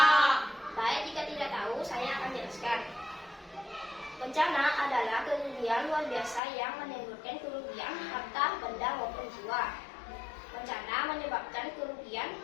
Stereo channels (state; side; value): drops out; right; at 6.4 s